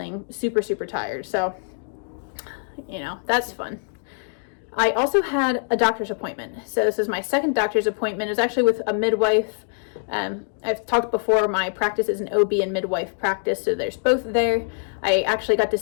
super, super tired. So, that's fun. I also had a doctor's appointment. So this is my second doctor's appointment. It was actually with a midwife. I've talked before, my practice is an OB and midwife practice, so there's both there. I actually got to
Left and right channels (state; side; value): silent; right; digital silence